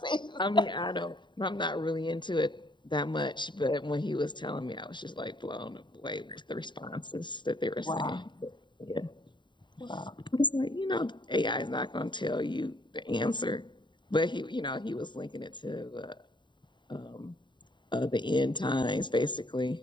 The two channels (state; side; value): late; right; 0.23 ms